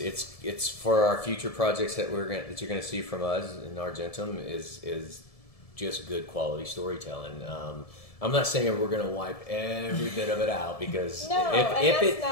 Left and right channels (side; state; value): right; late; 1.7 ms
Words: for our future projects that you're going to see from us in Argentum is just good quality storytelling. I'm not saying we're going to wipe every bit of it out because that's